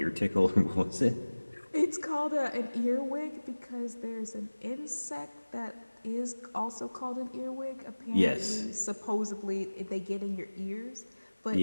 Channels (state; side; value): inverted; both; correlation -1.00